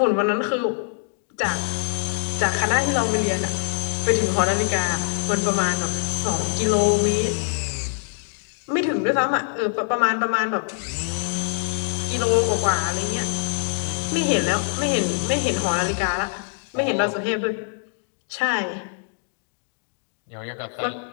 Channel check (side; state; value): right; silent; 63 dB below the other